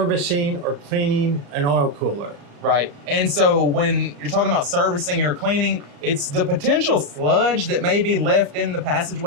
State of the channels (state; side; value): late; left; 35 ms